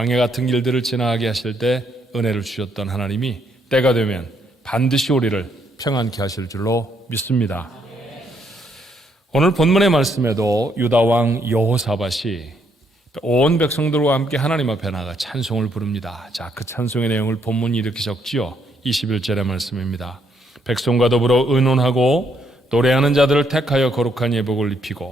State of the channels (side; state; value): both; normal; correlation 0.72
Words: 같은 길들을 지나가게 하실 때 은혜를 주셨던 하나님이 때가 되면 반드시 우리를 평안케 하실 줄로 믿습니다. 오늘 본문의 말씀에도 유다왕 여호사밧이 온 백성들과 함께 하나님 앞에 나가 찬송을 부릅니다. 자, 그 찬송의 내용을 본문이 이렇게 적지요. 21절의 말씀입니다. 백성과 더불어 의논하고 노래하는 자들을 택하여 거룩한 예복을